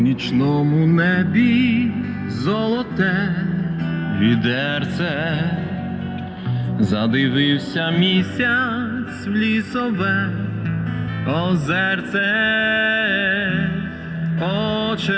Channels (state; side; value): identical; both; correlation 1.00